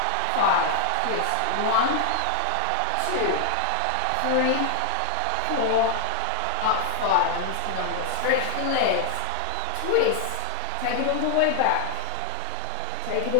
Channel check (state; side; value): different; both; correlation 0.00